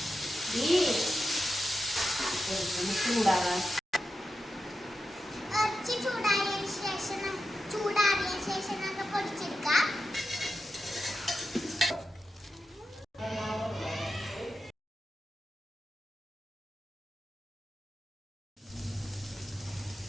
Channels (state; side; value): normal; both; correlation 0.89